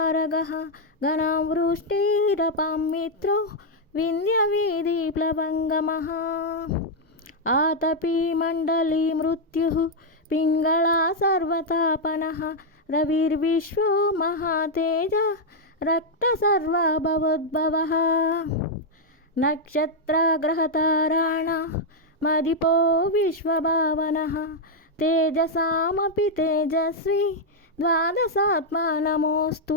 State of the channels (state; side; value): normal; both; correlation -0.01